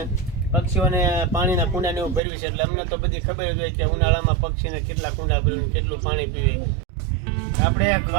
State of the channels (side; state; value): left; drops out; at 2.2 s